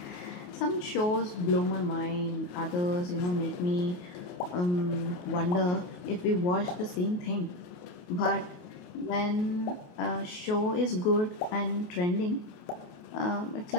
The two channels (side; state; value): right; late; 28 ms